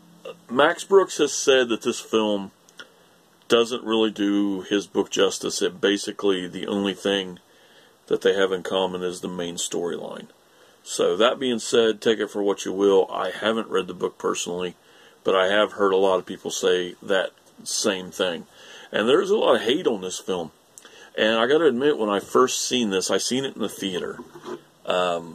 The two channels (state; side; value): identical; both; correlation 1.00